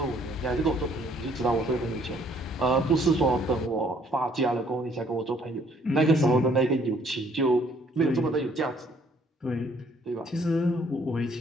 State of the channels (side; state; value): both; normal; correlation 0.63